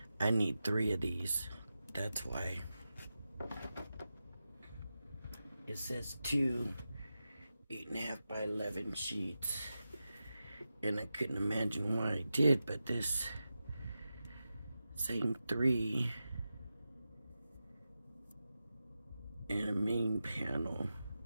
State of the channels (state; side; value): inverted; both; correlation -0.91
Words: I need 3 of these. That's why it says 2 8.5 by 11 sheets, and I couldn't imagine why I did, but this saying 3 and a main panel.